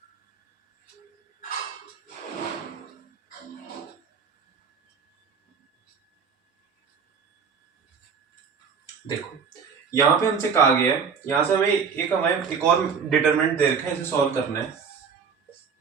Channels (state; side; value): quieter; left; 6.2 dB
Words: देखो यहां पे हमसे कहा गया है, यहां से हमें एक और डिटरमिनेंट दे रखा है, इसे सॉल्व करना है।